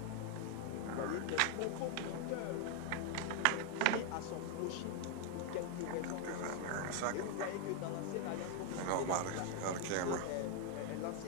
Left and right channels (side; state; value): both; different; correlation 0.00